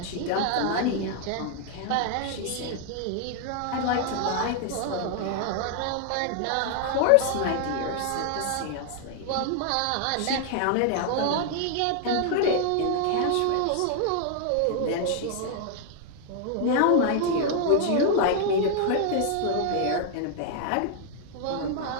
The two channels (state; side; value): different; both; correlation 0.00